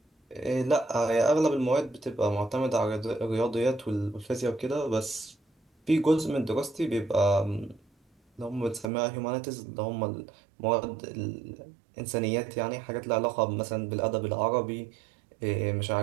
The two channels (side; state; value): left; drops out; at 8.9 s